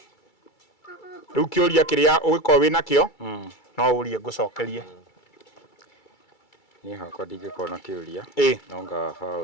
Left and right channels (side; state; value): right; late; 2.3 ms